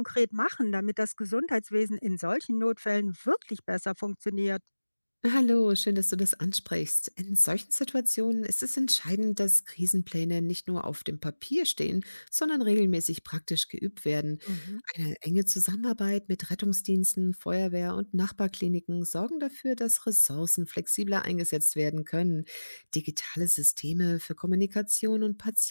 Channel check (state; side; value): inverted; both; correlation -1.00